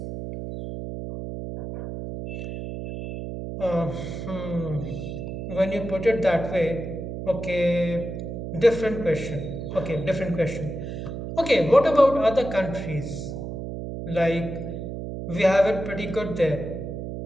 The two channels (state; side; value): noise; right; hum, 6 dB below the sound